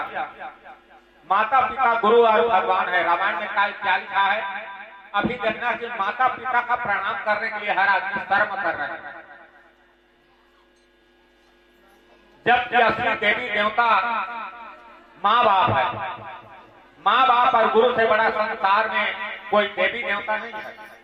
माता पिता गुरु और भगवान है, रामायण में क्या लिखा है, अभी देखना कि माता पिता का प्रणाम करने के लिए हर आदमी कर्म कर रहे हैं, जबकि असली देवी देवता माँ बाप है। माँ बाप और गुरु से बड़ा संसार में कोई देवी देवता नहीं है।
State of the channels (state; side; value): identical; both; correlation 1.00